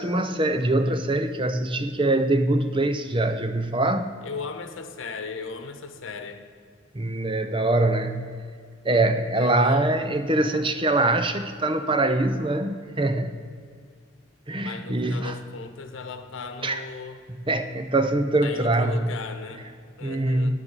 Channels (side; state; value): both; normal; correlation 0.49